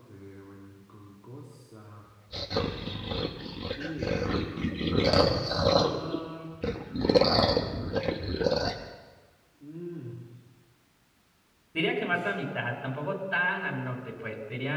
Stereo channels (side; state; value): both; identical; correlation 1.00